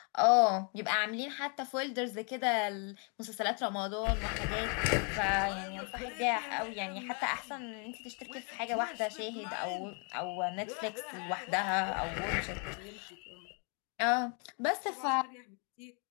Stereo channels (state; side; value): quieter; right; 38.3 dB